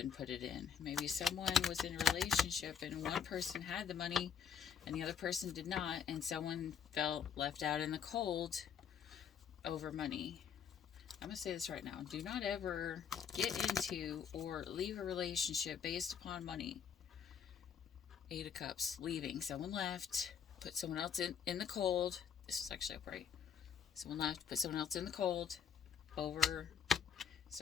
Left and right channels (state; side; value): quieter; right; 7.6 dB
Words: it in. Maybe someone was in a relationship and one person had the money and the other person did not, and someone felt left out in the cold over money. I'm going to say this right now. Do not ever get into or leave a relationship based upon money. 8 of Cups, leaving. Someone left, put someone else in the cold. This was actually upright. Someone left, put someone else in the cold over